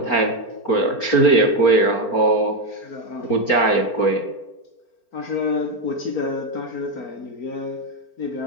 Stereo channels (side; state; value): right; late; 4.4 ms